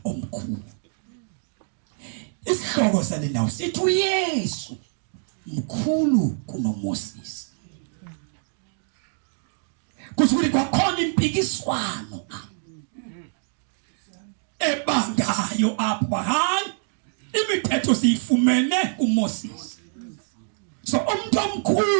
omkhulu. Isihloko sale ndawo sithi uYesu mkhulu kunoMoses. Kusuke kwakhona impikiswano ebangayo apha hayi imithetho siyifumene kuMoses. So umuntu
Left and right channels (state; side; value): silent; left; 60 dB below the other